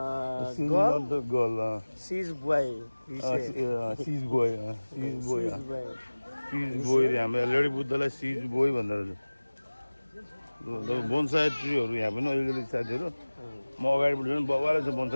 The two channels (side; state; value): both; inverted; correlation -1.00